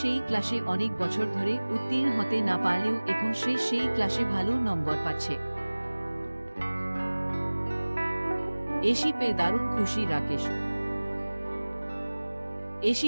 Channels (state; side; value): inverted; both; correlation -1.00